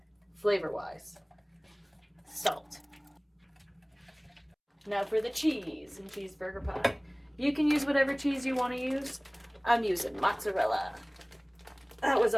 flavor-wise, salt. Now for the cheese and cheeseburger pie. You can use whatever cheese you want to use. I'm using mozzarella. That was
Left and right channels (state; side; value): identical; both; correlation 1.00